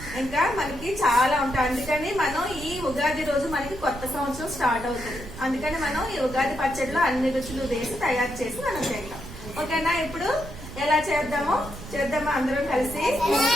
ఇంకా మనకి చాలా ఉంటాయి. అందుకని మనం ఈ ఉగాది రోజు మనకి కొత్త సంవత్సరం స్టార్ట్ అవుతుంది. అందుకని మనం ఈ ఉగాది పచ్చడిలో అన్ని రుచులు వేసి తయారు చేసి మనం చేద్దాం. ఓకేనా? ఇప్పుడు ఎలా చేద్దామా అందరం కలిసి?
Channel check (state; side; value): noise; right; rumble, 13 dB below the sound